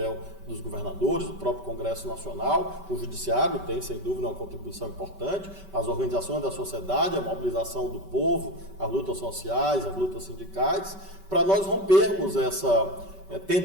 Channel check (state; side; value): late; right; 5.3 ms